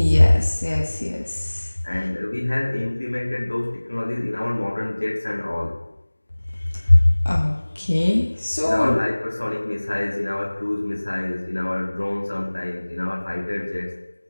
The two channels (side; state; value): both; inverted; correlation -1.00